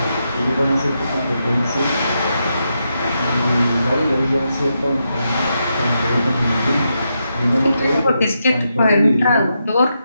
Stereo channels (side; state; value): both; inverted; correlation -0.84